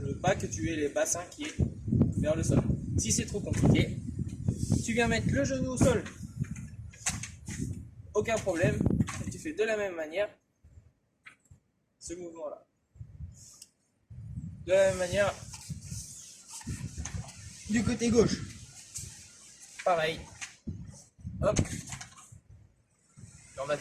ne veux pas que tu aies les bassins qui est vers le sol. Si c'est trop compliqué, tu viens mettre le genou au sol. Aucun problème. Et tu fais de la même manière ce mouvement-là. De la même manière du côté gauche. Pareil. Hop. on va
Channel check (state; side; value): identical; both; correlation 1.00